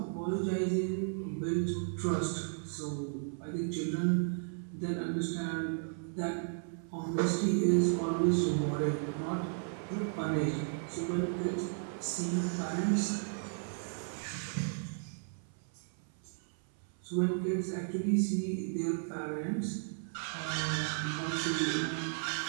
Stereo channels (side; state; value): left; silent; 55 dB below the other